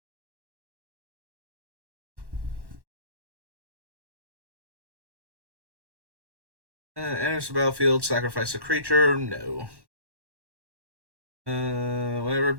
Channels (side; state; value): left; late; 1.1 ms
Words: Enters the battlefield, sacrifice a creature. No. Whenever a